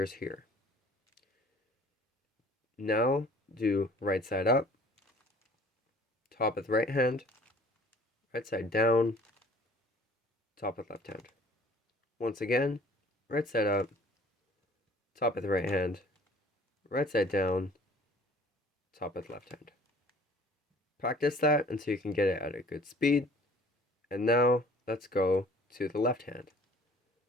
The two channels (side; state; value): both; normal; correlation 0.51